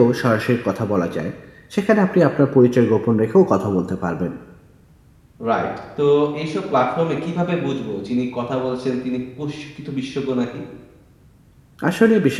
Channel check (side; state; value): both; identical; correlation 1.00